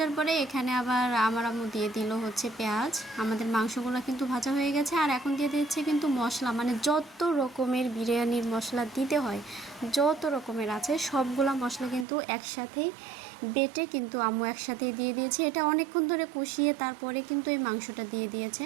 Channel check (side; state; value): left; drops out; at 12.1 s